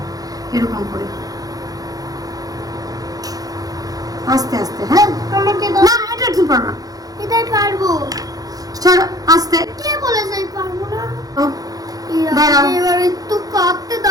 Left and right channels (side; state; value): left; late; 0.18 ms